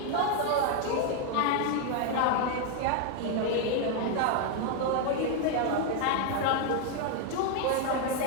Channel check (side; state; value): both; different; correlation 0.00